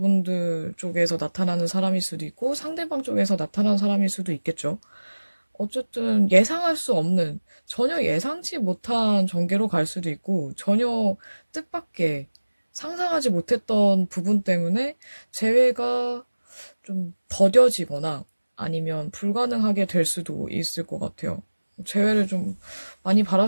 쪽에서 나타나는 사람일 수도 있고, 상대방 쪽에서 나타나는 사람일 수도 있겠죠. 어쨌든 예상할 수 없는, 전혀 예상치 못한 전개로 갈 수도 있고, 전혀 뜻밖의 상상하지 못했던 부분 때문에 재회가 좀 더뎌지거나 아니면 불가능하게 될 수도 있을 것 같아요. 재회를 좀 많이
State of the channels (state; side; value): inverted; both; correlation -1.00